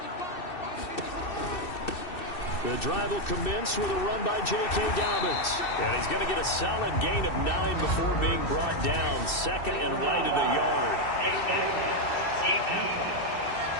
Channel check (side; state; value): right; late; 2.6 ms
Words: The drive will commence with a run by J.K. Dobbins. And he's going to get a solid gain of 9 before being brought down. Second and right at a yard.